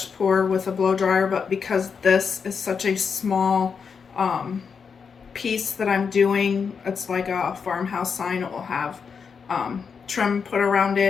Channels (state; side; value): quieter; right; 6.0 dB